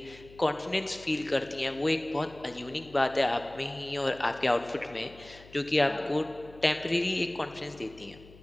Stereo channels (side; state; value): left; noise; hum, 21 dB below the sound